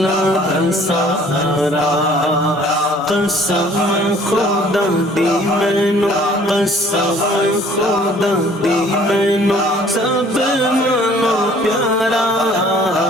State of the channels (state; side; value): normal; both; correlation 0.55